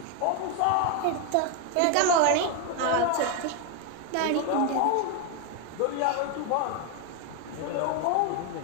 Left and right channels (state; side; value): different; both; correlation 0.01